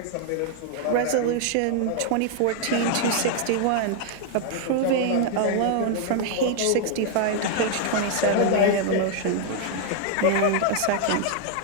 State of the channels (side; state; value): both; different; correlation 0.00